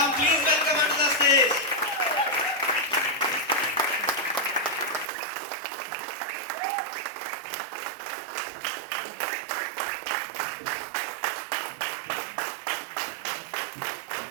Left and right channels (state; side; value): drops out; left; at 5.1 s